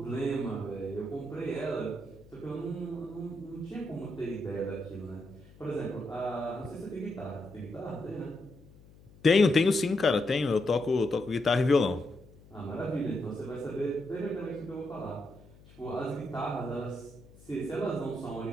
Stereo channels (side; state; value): left; noise; hum, 23 dB below the sound